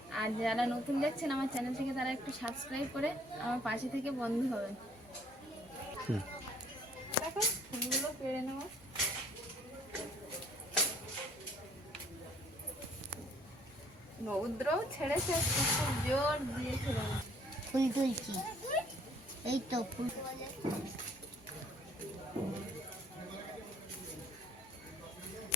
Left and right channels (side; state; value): both; normal; correlation 0.61